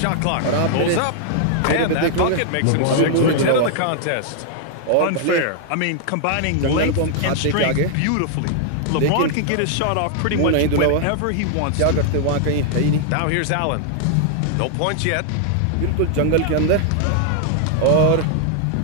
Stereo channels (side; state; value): both; different; correlation 0.00